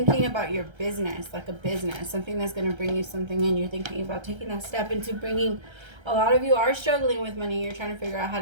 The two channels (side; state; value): left; late; 1.3 ms